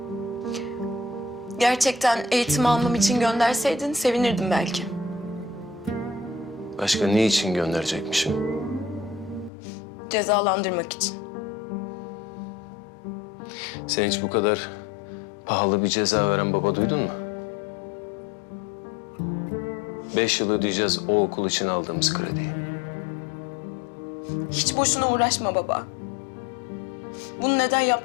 Gerçekten eğitim almam için gönderseydin sevinirdim belki. Başka ne için gönderecekmişim? Cezalandırmak için. Sen hiç bu kadar pahalı bir ceza veren baba duydun mu? 5 yıl ödeyeceğiz o okul için aldığımız krediyi. Hiç boşuna uğraşma baba. Bunu neden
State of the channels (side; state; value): right; drops out; at 9.5 s